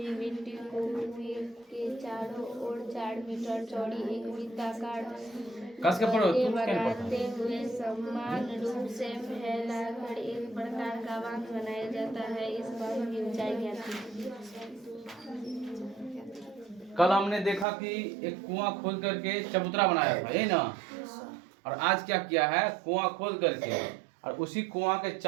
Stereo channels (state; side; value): drops out; left; at 17.7 s